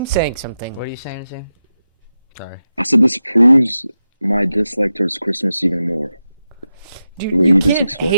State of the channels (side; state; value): both; inverted; correlation -0.90